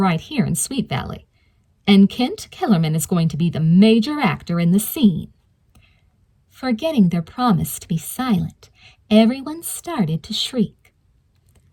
here in Sweet Valley. And Kent Kellerman is going to be the major actor in the scene." Forgetting their promise to be silent, everyone started to shriek.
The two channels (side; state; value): both; identical; correlation 1.00